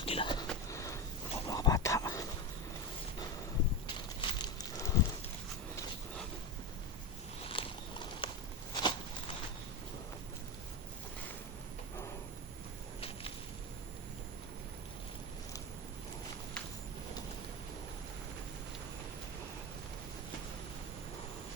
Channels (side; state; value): both; normal; correlation 0.16